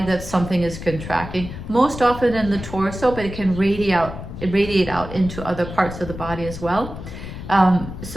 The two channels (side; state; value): left; noise; rumble, 10 dB below the sound